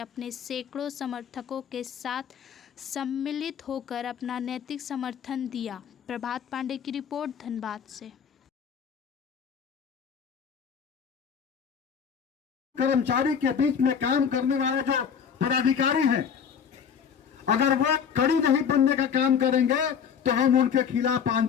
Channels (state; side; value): quieter; right; 7.4 dB